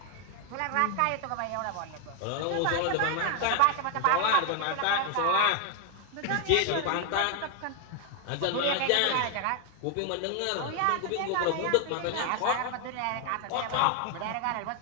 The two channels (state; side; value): different; both; correlation 0.00